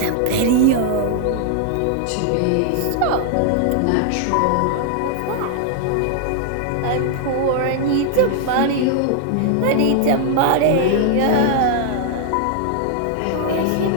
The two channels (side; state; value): both; different; correlation 0.00